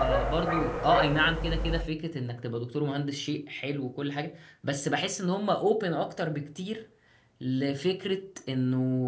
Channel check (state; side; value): identical; both; correlation 1.00